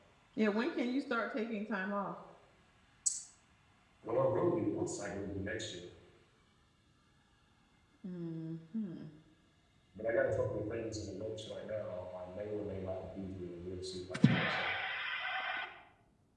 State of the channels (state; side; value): identical; both; correlation 1.00